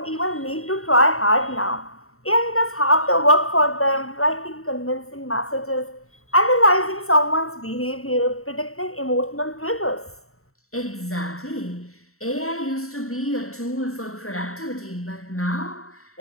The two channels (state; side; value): late; right; 0.63 ms